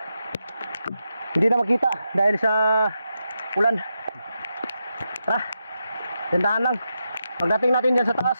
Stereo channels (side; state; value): both; inverted; correlation -0.86